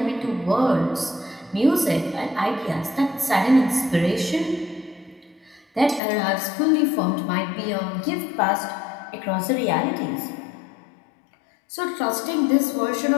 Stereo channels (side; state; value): right; drops out; at 6.0 s